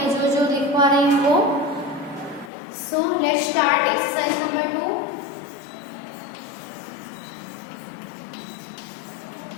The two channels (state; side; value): drops out; right; at 2.5 s